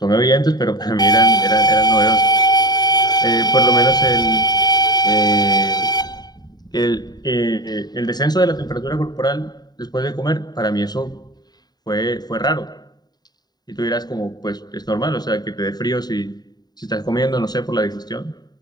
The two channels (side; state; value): right; late; 0.20 ms